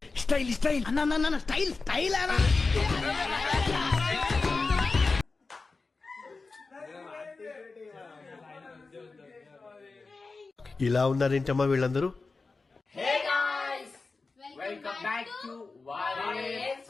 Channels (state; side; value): quieter; right; 3.9 dB